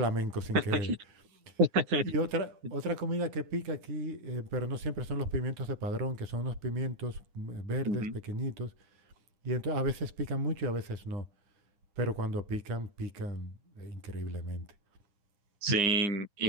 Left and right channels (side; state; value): left; late; 9.6 ms